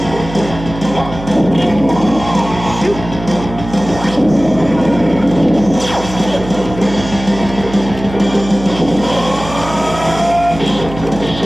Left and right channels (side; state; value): right; noise; hum, 11 dB below the sound